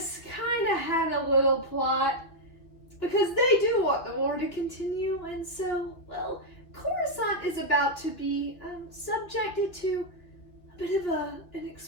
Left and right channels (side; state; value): right; late; 2.6 ms